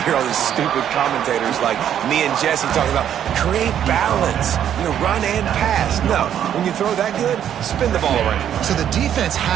hear all these stupid commentators like me and Jesse talking about create balance, run and pass. No, when you throw that good, spin the ball around. So the defense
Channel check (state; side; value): quieter; left; 9.9 dB